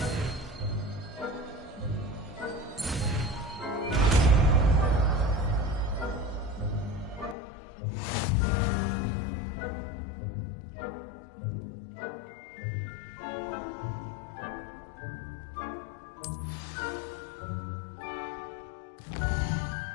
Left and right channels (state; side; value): drops out; right; at 7.4 s